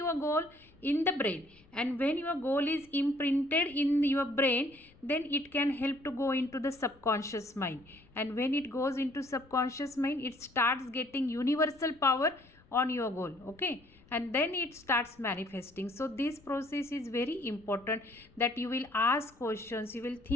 goal in the brain. And when your goal is imprinted in your brain, then it can help to go into the subconscious mind. And when it goes into subconscious mind, it starts getting universal power on your goal, okay? And then it starts manifesting. So this process is very important, that you will ask questions, you will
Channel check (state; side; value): noise; left; rumble, 28 dB below the sound